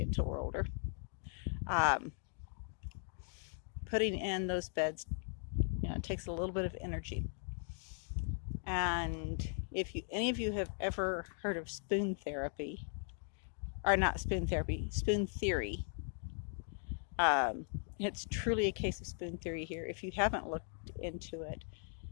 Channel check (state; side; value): silent; right; 52 dB below the other